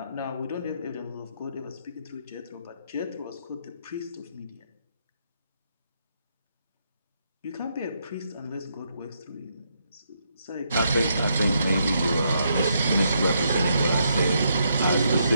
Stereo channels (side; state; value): both; inverted; correlation -0.77